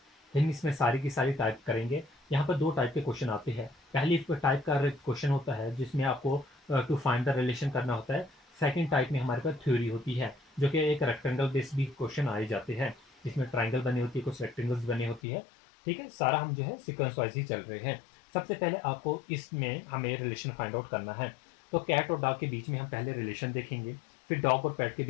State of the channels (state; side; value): drops out; right; at 15.2 s